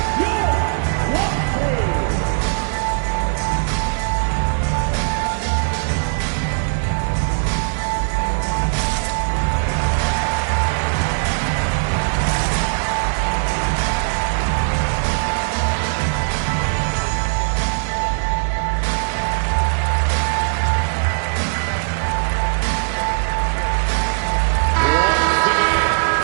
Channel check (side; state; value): left; silent; digital silence